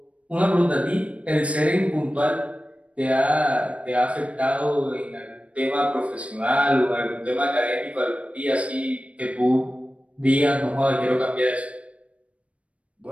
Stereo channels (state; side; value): late; left; 0.063 ms